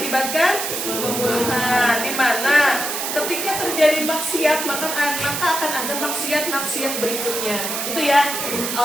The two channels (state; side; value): noise; right; hiss, 3 dB below the sound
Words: pembunuhan. Di mana ketika terjadi maksiat maka akan ada maksiat berikutnya. Itu ya.